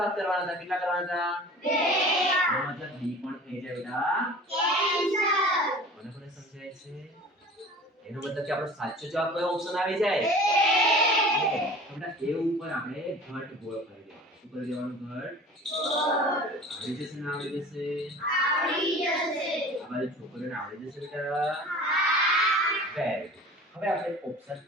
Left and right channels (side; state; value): both; normal; correlation 0.42